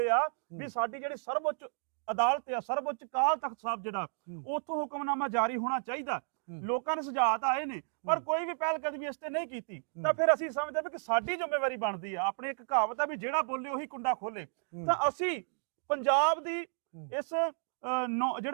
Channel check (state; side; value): silent; left; digital silence